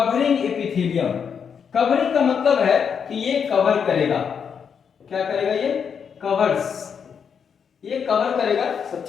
एपिथेलियम, कवरिंग का मतलब है कि ये कवर करेगा। क्या करेगा? ये कवर्स, ये कवर करेगा सब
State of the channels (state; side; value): quieter; right; 6.9 dB